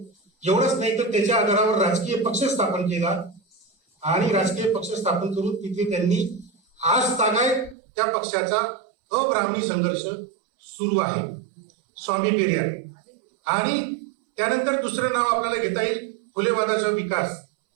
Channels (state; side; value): drops out; left; at 7.8 s